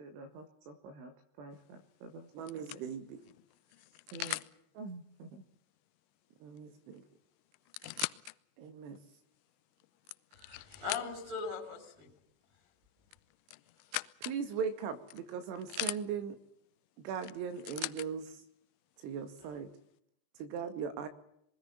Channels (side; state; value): left; late; 20 ms